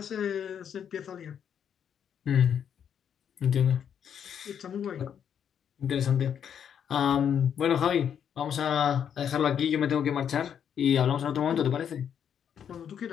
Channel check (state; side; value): quieter; right; 8.4 dB